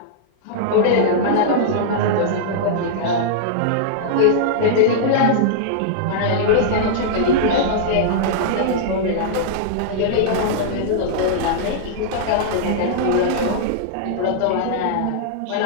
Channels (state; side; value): different; both; correlation -0.02